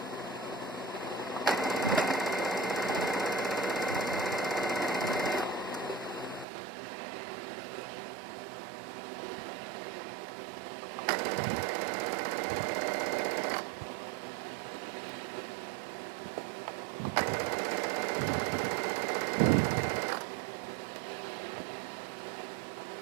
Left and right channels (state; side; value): drops out; left; at 6.5 s